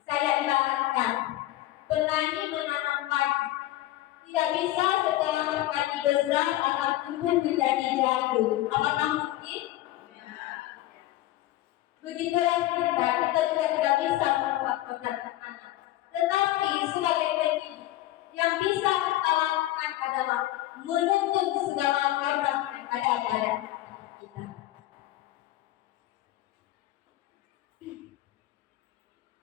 Saya ibaratkan petani menanam padi. Tidak bisa setelah padi besar akan tumbuh menjadi jagung. Apakah mungkin? Begitulah kita juga tidak bisa membuat program anak. Tetapi sebagai pendidik, yang bisa kita lakukan adalah menuntun segala program yang ada pada kita.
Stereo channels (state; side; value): quieter; right; 15.5 dB